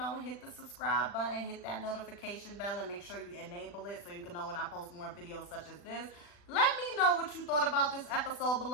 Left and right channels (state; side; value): late; right; 40 ms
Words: the subscribe button, hit that notification bell, and make sure you enable it so you can know when I post more videos such as this. Let me know what you thought about this episode